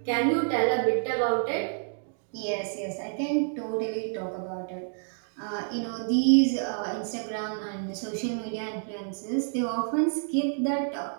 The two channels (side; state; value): left; silent; digital silence